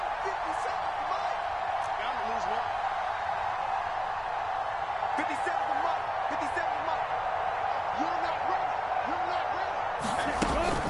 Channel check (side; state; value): both; identical; correlation 1.00